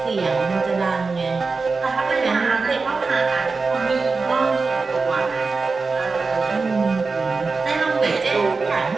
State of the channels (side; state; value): left; quieter; 4.2 dB